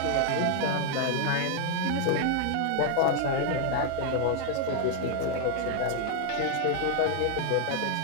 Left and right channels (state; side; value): different; both; correlation 0.00